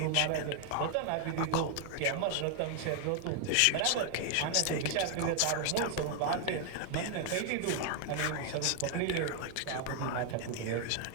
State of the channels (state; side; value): different; both; correlation 0.00